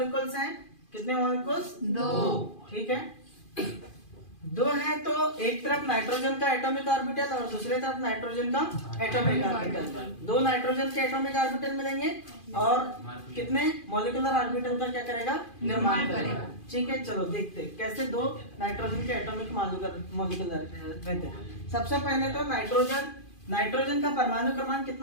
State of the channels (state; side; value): late; right; 2.4 ms